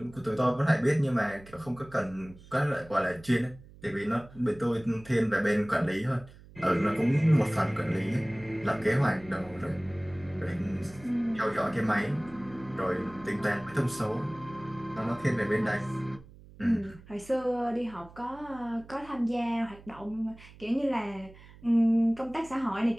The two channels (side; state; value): right; noise; hum, 21 dB below the sound